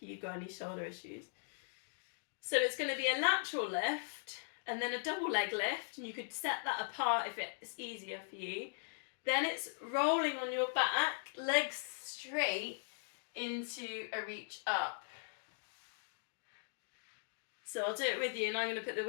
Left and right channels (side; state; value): right; silent; digital silence